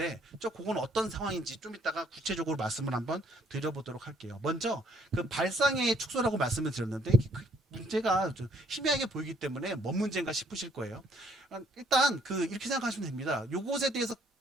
그건 어떤 상황인지 좀 이따가 구체적으로 말씀을 한번 드려보도록 할게요. 먼저 그 발상의 축소라고 말씀을 드렸는데, 그 문제가 좀 희미하게 보이기 때문에 뭔 문제인가 싶으실 거예요. 일단 이렇게 생각하시면 됩니다. 요것에 대해서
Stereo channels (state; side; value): normal; both; correlation 0.65